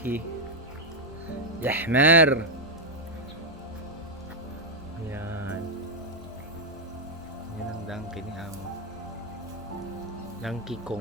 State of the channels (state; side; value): normal; both; correlation 0.00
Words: Yahmer. Yan. Yan ang donkey ni Amo. Donkey